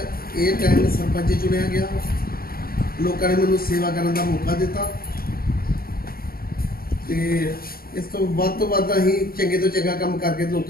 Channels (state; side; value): late; right; 0.43 ms